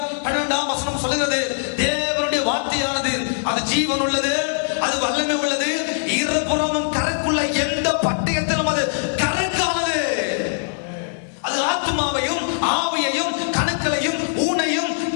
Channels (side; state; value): right; silent; 65 dB below the other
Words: 12ஆம் வசனம் சொல்லுகிறது, தேவனுடைய வார்த்தையானது அது ஜீவன் உள்ளது, அது வல்லமை உள்ளது, இருபுறமும் கரைக்குள்ள எந்த பட்டயத்திலும் அது கரைக்கானது. அது ஆத்மாவையும் ஆவியையும் கணுக்களையும் ஊனையும்